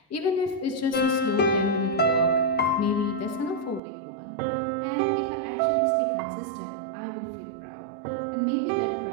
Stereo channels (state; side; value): drops out; left; at 3.8 s